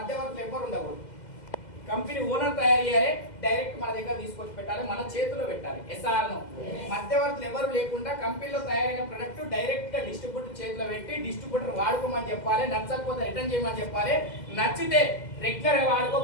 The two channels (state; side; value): late; right; 2.0 ms